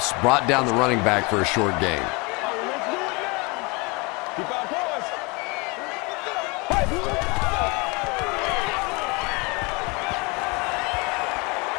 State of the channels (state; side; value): quieter; right; 28.1 dB